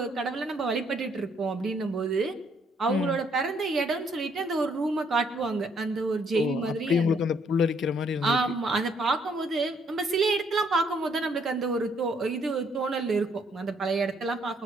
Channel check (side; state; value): both; normal; correlation 0.68